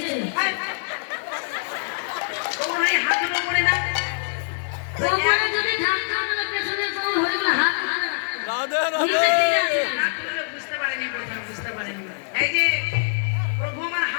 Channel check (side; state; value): right; silent; 63 dB below the other